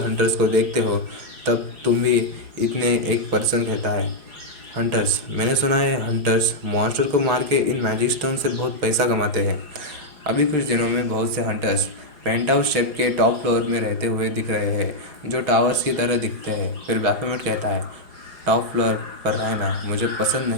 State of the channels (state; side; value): late; left; 4.8 ms